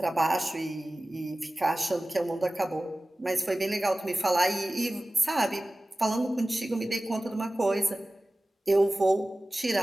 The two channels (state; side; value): normal; both; correlation 0.97